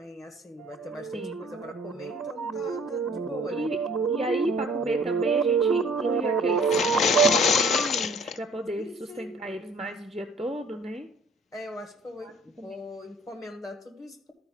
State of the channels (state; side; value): normal; both; correlation 0.53